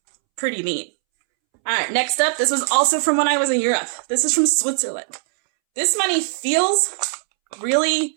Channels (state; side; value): silent; left; 66 dB below the other